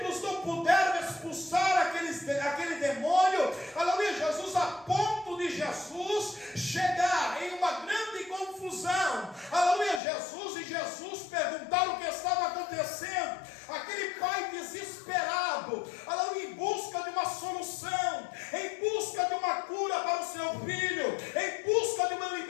não puderam expulsar aquele demônio, aleluia, Jesus, a ponto de Jesus chegar em uma grande confusão, aleluia, Jesus perguntar o que estava acontecendo. Aquele pai desesperado, aleluia, em busca de uma solução, em busca de uma cura para o seu filho, em busca de uma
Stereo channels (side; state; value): right; drops out; at 10.0 s